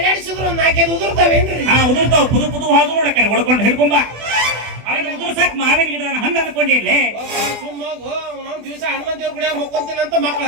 ಒಂದು 4 ಉದುರ್ತಾವೇನ್ರಿ? ಉದುರ್ತಾವ. ಪುದು ಪುದು ಹಾದು ನೋಡ ಕಡೆ ಹೊಡ್ಕೊಂಡು ಹಿಡ್ಕೊಂಬ. ಅವನು ಉದುರ್ಸಕ್ ಮಾವಿನ ಗಿಡನ ಹಣ್ಣು ಅನ್ಕೊಂಡಿರ್ಲಿ. ಸುಮ್ಮೋಗು ಅವ್ನವ್ನ ದಿವಸ ಹನುಮಂತ ದೇವ್ರ ಗುಡಿಯಾಗ ಮಕ್ಕೊಂತೀನಿ ಅಂತ ಮಕ್ಳು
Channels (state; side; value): late; left; 24 ms